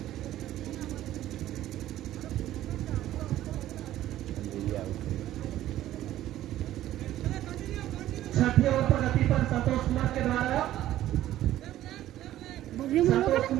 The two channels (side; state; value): left; quieter; 13.5 dB